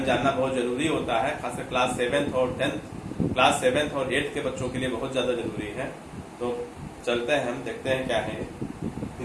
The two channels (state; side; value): identical; both; correlation 1.00